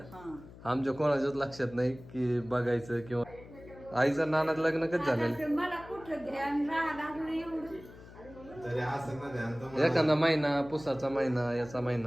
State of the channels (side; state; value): left; noise; hum, 18 dB below the sound